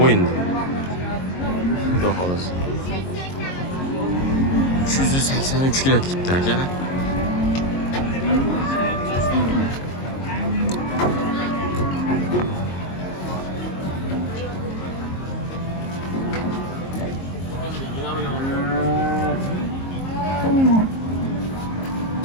bo'yinda. Xudo xolasa. 383 kilo ketdi akalar.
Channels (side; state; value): right; late; 22 ms